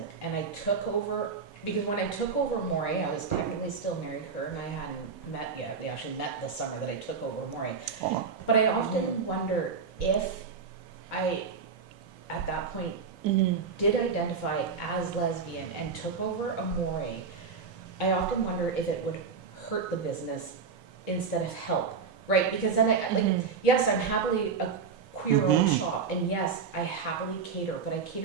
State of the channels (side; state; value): left; quieter; 5.5 dB